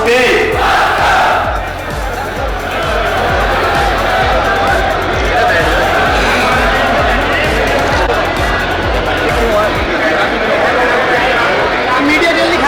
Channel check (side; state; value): both; identical; correlation 1.00